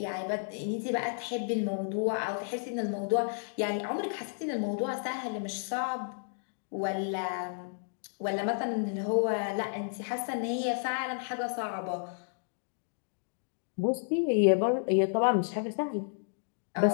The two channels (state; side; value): silent; right; digital silence